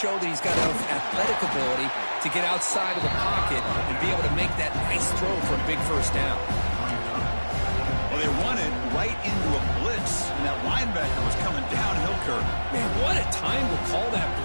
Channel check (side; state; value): both; inverted; correlation -1.00